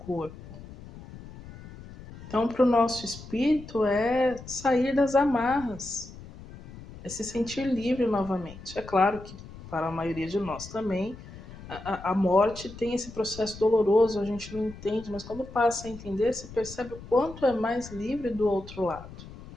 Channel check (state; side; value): noise; left; rumble, 16 dB below the sound